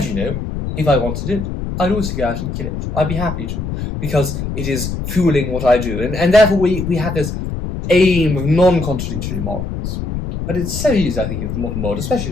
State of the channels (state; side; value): noise; left; rumble, 5 dB below the sound